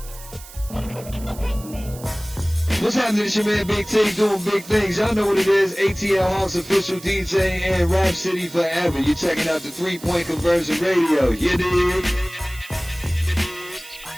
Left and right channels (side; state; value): right; noise; hiss, 17 dB below the sound